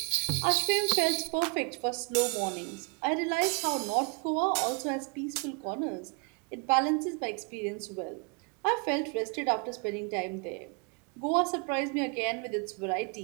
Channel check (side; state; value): left; quieter; 36.0 dB